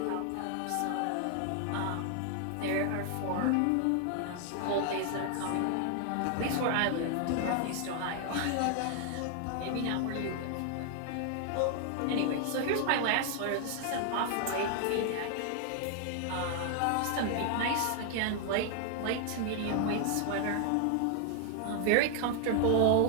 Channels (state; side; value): different; both; correlation 0.00